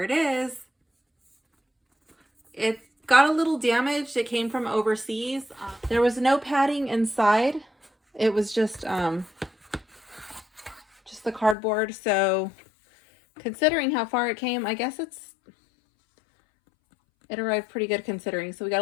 it is. It got a little damaged. It came from overseas. There was no padding inside. It was just the cardboard. So considering how far it came, I guess it arrived pretty good considering. So we got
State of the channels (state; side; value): drops out; right; at 11.6 s